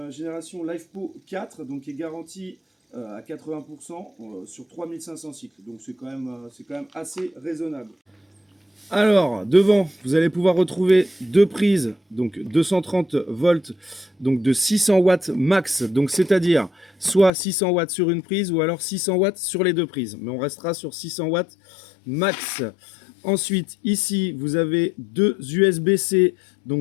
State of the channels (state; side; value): drops out; right; at 17.3 s